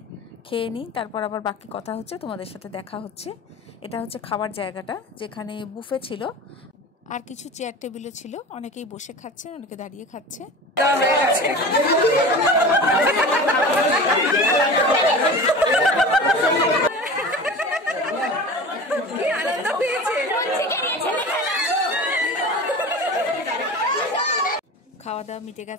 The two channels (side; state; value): both; normal; correlation 0.34